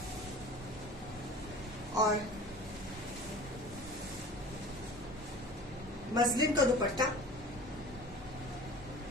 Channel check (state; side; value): normal; both; correlation 0.40